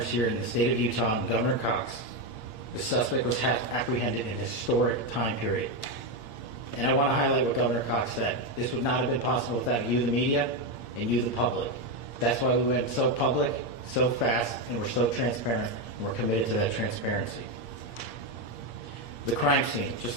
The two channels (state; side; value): late; right; 8.6 ms